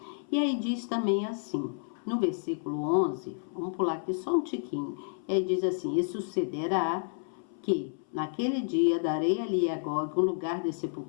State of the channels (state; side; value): silent; right; 58 dB below the other